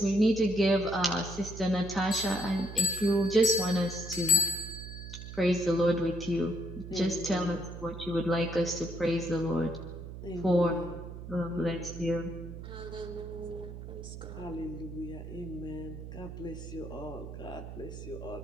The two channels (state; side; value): noise; right; hum, 10 dB below the sound